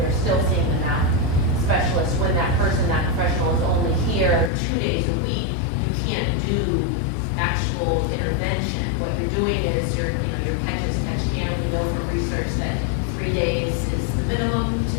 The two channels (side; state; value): right; drops out; at 4.5 s